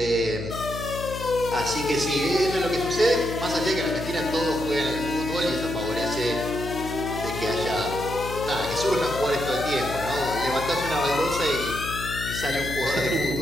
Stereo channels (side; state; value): left; noise; hum, 8 dB below the sound